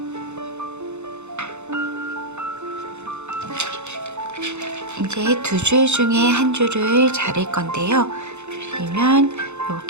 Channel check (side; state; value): left; late; 0.82 ms